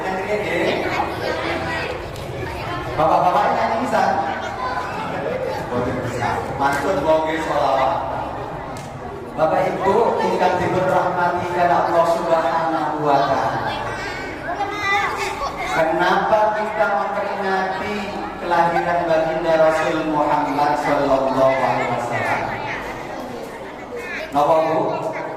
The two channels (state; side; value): identical; both; correlation 1.00